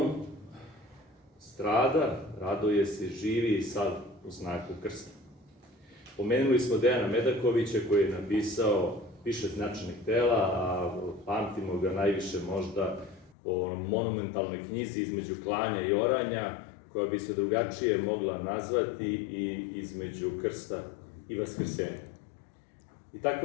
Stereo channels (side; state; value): right; drops out; at 13.4 s